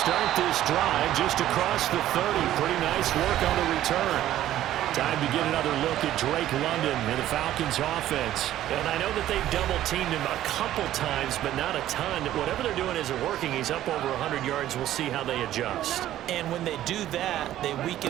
this drive just across the 30. Pretty nice work on the return. Time to get another look at Drake London and the Falcons offense. And I know that they've double-teamed him a couple times, but not a ton. Whatever they're doing isn't working. He's up over 100 yards. We'll see how they adjust. And when they do that, they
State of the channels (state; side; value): quieter; left; 13.0 dB